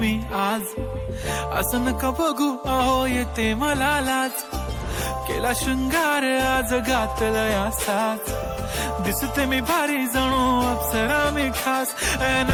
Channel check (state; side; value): identical; both; correlation 1.00